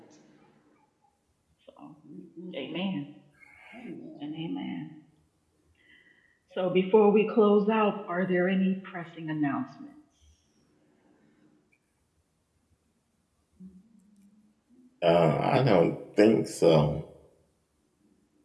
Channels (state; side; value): identical; both; correlation 1.00